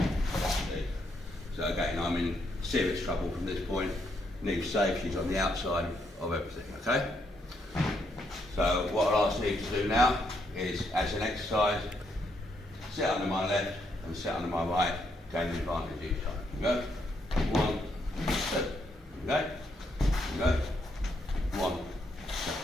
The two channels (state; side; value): normal; both; correlation 0.76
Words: So again, I'm in serious trouble from this point. Neve's safe, she's on the outside of everything, okay? So what I'll ask Neve to do now is, as an exercise, sit under my left and sit under my right, gain the advantage each time. Here we go. 1, 2. Okay? Here we go. 1, 2.